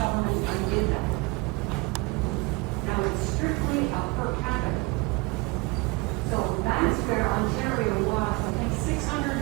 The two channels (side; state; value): left; quieter; 25.9 dB